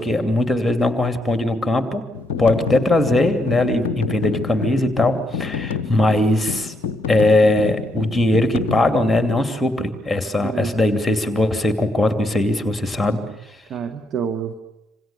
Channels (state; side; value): normal; both; correlation 0.77